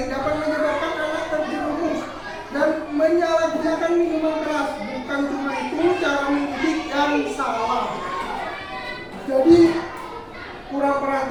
dapat menyebabkan anak terjerumus dan menyalahgunakan minuman keras. Bukan cuma itu, cara mendidik yang salah. Jadi kurang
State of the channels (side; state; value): both; identical; correlation 1.00